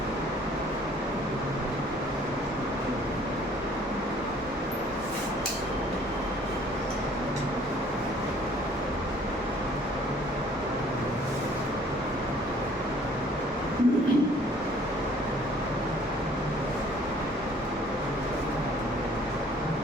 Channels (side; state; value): both; normal; correlation 0.56